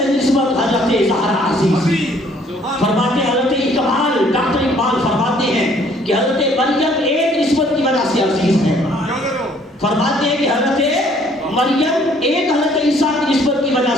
نسبت حضرت زہرا عزیز. فرماتے ہیں حضرت اقبال، ڈاکٹر اقبال فرماتے ہیں کہ حضرت مریم ایک نسبت کی وجہ سے عزیز ہے. فرماتے ہیں کہ حضرت مریم ایک حضرت عیسیٰ کی نسبت کی وجہ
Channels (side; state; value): both; normal; correlation 0.61